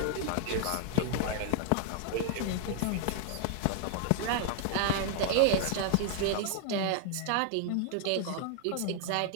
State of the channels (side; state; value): both; different; correlation 0.00